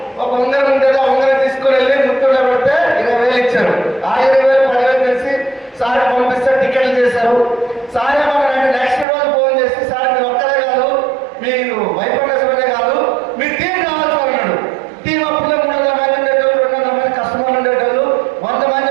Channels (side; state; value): left; drops out; at 9.1 s